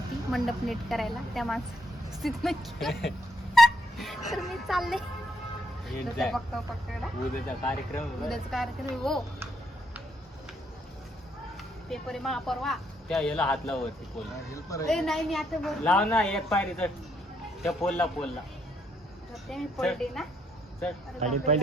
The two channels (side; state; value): both; normal; correlation 0.73